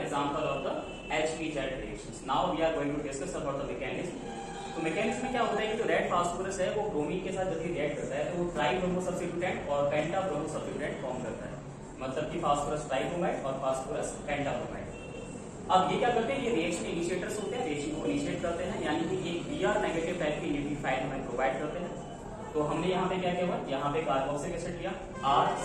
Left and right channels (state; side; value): identical; both; correlation 1.00